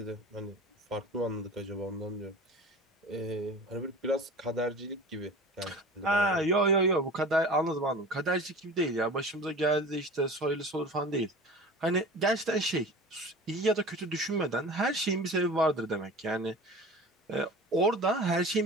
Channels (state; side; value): normal; both; correlation 0.38